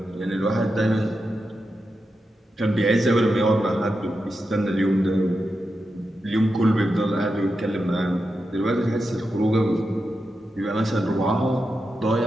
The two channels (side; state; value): both; normal; correlation 0.88